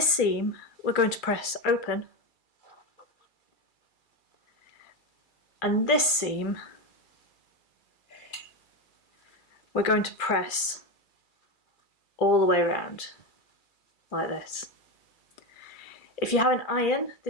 seam we're going to press open, and this seam we're going to press all the way around, like this. If you have an iron,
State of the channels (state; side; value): late; right; 2.3 ms